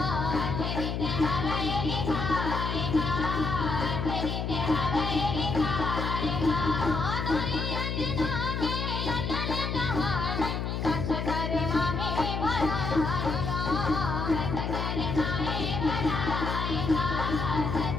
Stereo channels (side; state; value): left; noise; hum, 2 dB below the sound